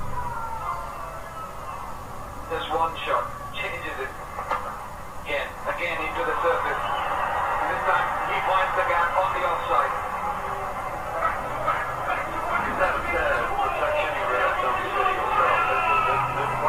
Just one shot, changes it. Again into the surface. This time he finds the gap on the offside. Is that reflection you realize on the city yourself? That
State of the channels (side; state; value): both; identical; correlation 1.00